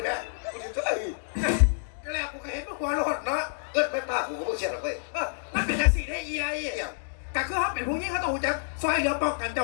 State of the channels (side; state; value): right; silent; digital silence